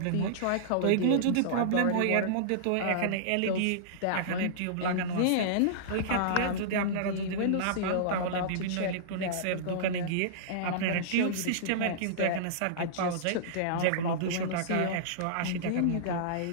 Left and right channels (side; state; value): both; different; correlation -0.03